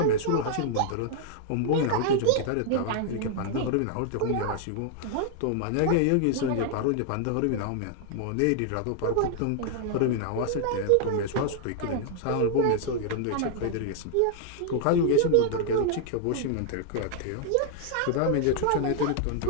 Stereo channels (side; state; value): both; different; correlation 0.00